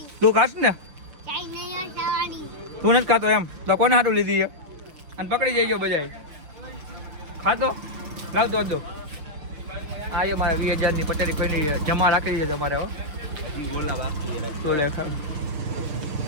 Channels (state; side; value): late; left; 6.6 ms